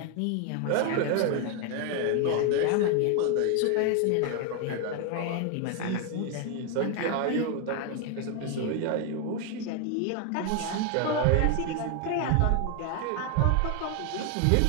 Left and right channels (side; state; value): both; different; correlation 0.01